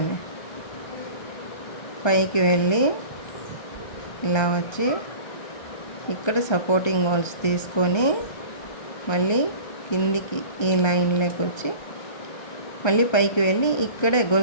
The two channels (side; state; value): right; late; 1.3 ms